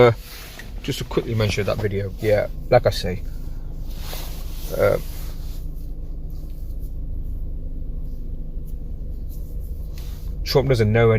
quickly mention that video. Yeah, like I say, Trump doesn't know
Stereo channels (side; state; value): both; identical; correlation 1.00